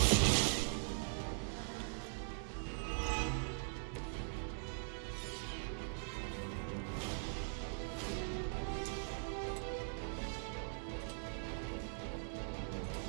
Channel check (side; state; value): left; silent; digital silence